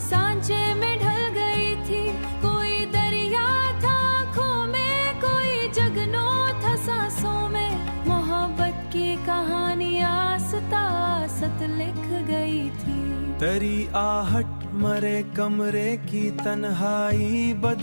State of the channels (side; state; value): both; inverted; correlation -1.00